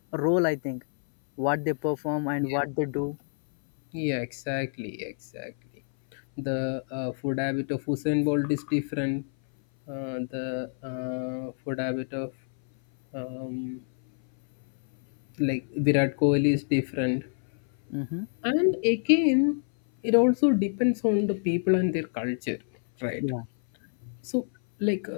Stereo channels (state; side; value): silent; right; 58 dB below the other